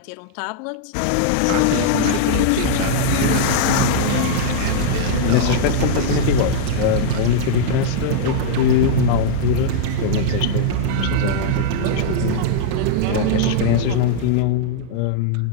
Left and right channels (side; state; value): both; different; correlation -0.01